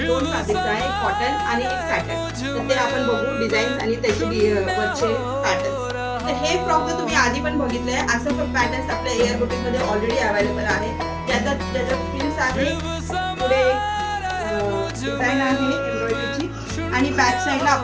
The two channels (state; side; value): identical; both; correlation 1.00